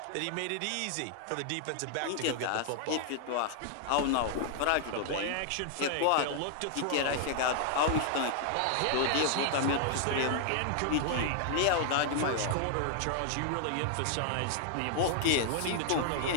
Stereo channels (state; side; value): different; both; correlation 0.00